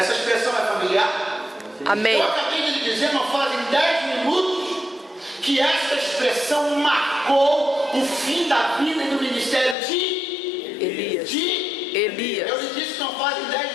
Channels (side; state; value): right; drops out; at 9.8 s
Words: expressão é familiar? Amém. Eu acabei de lhe dizer, não fazem 10 minutos, que essa expressão marcou o fim da vida e do ministério de Elias. Eu lhe disse que não fazem 10